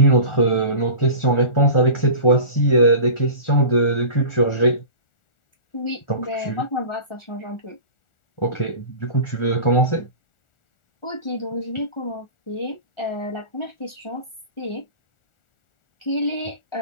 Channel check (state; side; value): late; right; 1.4 ms